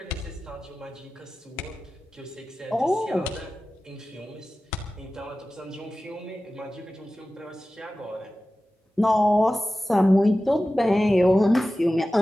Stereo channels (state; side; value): normal; both; correlation 0.95